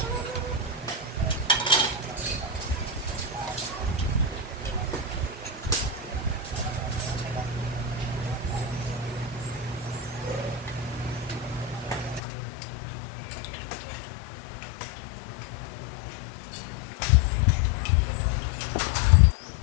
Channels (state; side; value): drops out; right; at 12.2 s